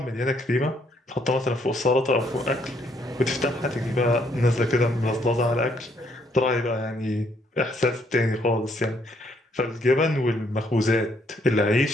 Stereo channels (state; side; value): normal; both; correlation 0.70